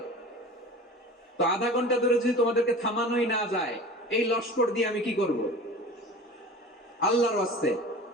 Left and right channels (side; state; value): both; normal; correlation 0.38